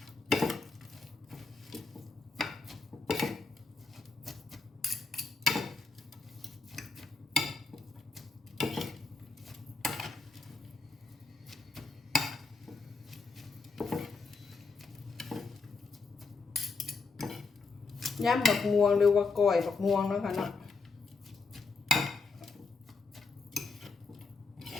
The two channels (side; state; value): right; quieter; 4.3 dB